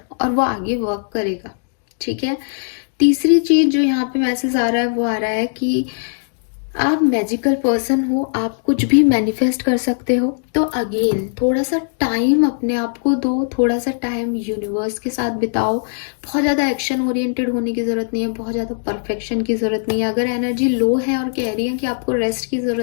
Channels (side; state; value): right; silent; digital silence